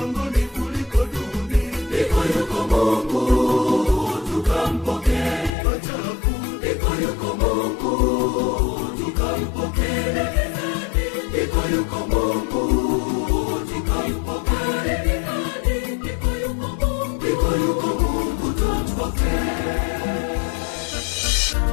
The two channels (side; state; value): right; drops out; at 5.5 s